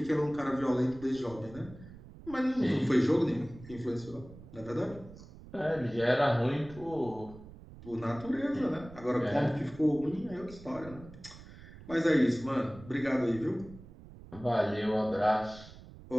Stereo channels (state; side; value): noise; right; rumble, 18 dB below the sound